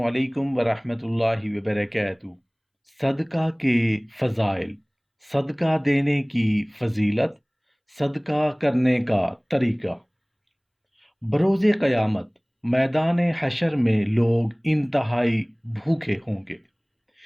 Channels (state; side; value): identical; both; correlation 1.00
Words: علیکم ورحمۃ اللہ وبرکاتہ۔ صدقہ کے فضائل، صدقہ دینے کی فضیلت، صدقہ کرنے کا طریقہ۔ بروز قیامت میدان حشر میں لوگ انتہائی بھوکے ہوں گے،